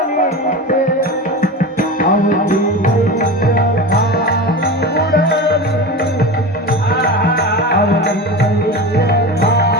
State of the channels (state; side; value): normal; both; correlation 0.27